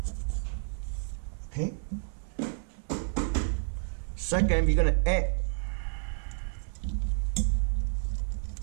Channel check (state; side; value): silent; left; digital silence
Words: Okay. Second, we're gonna add